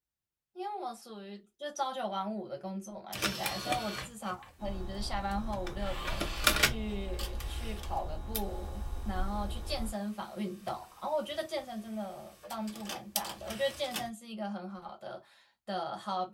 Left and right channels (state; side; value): identical; both; correlation 1.00